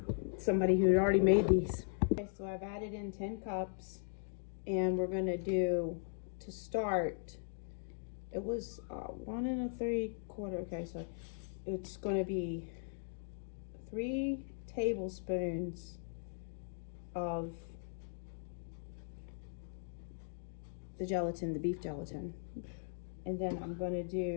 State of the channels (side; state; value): right; silent; digital silence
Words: somebody who had already made these. Okay, so I've added in 10 cups, and we're going to do, to start, it was 1 3/4. Okay, so it's going to be 3 tablespoons of the gelatin, the beef gelatin. And then I'm going to